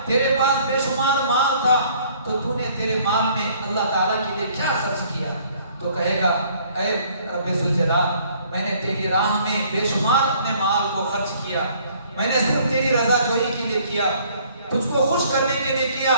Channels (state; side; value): inverted; both; correlation -0.59